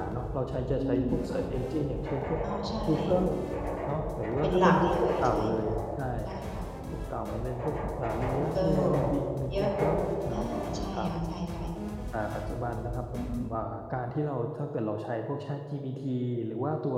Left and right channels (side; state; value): both; identical; correlation 1.00